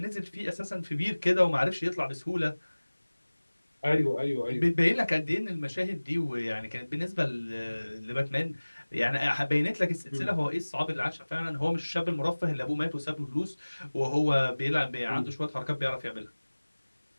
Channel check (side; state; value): both; inverted; correlation -1.00